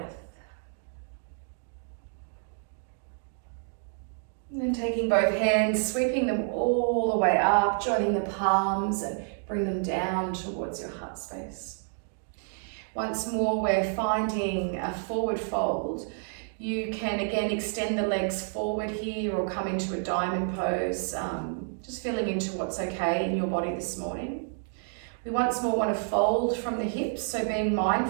And then taking both hands, sweeping them all the way up, joining the palms and bring them down towards your heart space. Once more, we're finding a forward fold. You can again extend the legs forward here or come into a diamond pose, just feeling into what's okay in your body this morning. We once more want to fold from the hips, so being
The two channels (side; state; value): left; silent; 58 dB below the other